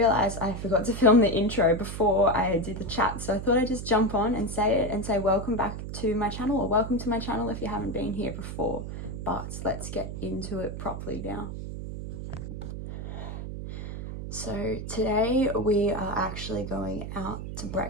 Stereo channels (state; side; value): noise; right; hum, 7 dB below the sound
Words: I forgot to film the intro before I did the chat, so I thought I'd just jump on and say it and say welcome back to my channel, or welcome to my channel if you haven't been here before. But let's get into it properly now. So today we are actually going out to